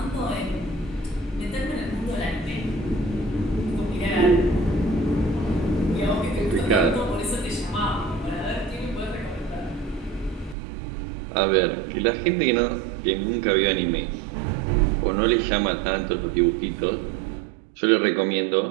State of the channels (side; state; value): left; drops out; at 10.6 s